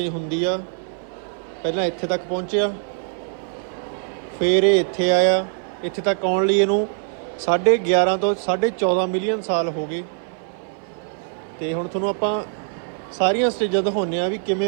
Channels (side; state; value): left; silent; 59 dB below the other